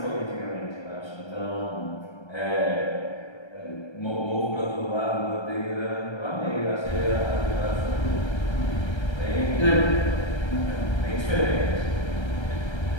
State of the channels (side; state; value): right; late; 1.3 ms